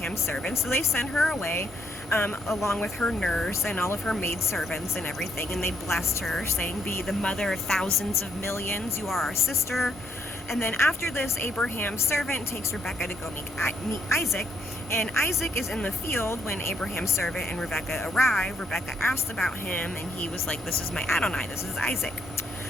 servant. So they sent her away along with her nurse and all of her maidservants and everything, and they blessed her, saying, be the mother of thousands of millions, you are our sister. And then after this, Abraham's servant takes Rebecca to go meet Isaac, and Isaac is in the field when Abraham's servant and Rebecca arrive. Rebecca asked about him, and he was like, this is my Adonai, this is Isaac.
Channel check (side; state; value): both; normal; correlation 0.73